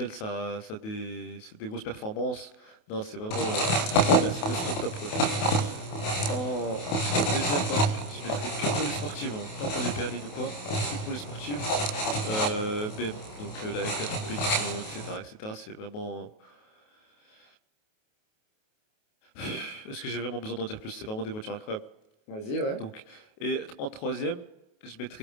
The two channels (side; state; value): right; late; 28 ms